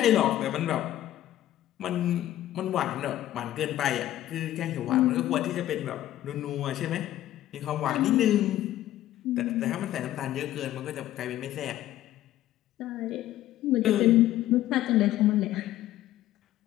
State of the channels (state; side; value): quieter; right; 13.6 dB